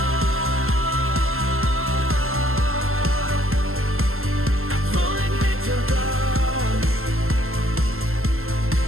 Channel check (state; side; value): late; left; 0.62 ms